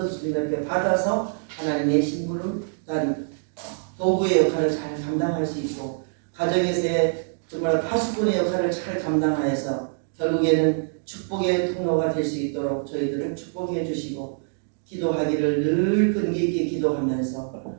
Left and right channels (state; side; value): silent; left; digital silence